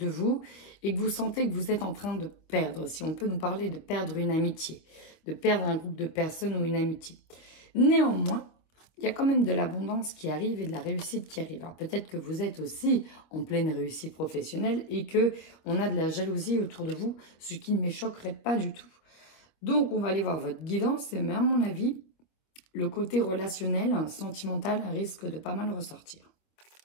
vous et que vous sentez que vous êtes en train de perdre. Si on peut nous parler de perdre une amitié, de perdre un groupe de personnes ou une amitié. Néanmoins, il y a quand même de l'abondance qui arrive et de la réussite qui arrive. Alors peut-être que vous êtes aussi en pleine réussite professionnelle et que on a de la jalousie autour de vous, ce qui ne me choquerait pas du tout. Donc on va aller voir votre guidance et à mon avis, le côté relationnel, sentimental risque de pas mal ressortir.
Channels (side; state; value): right; late; 25 ms